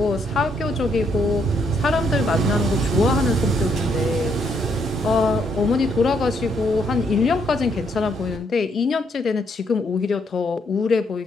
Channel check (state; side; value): normal; both; correlation 0.73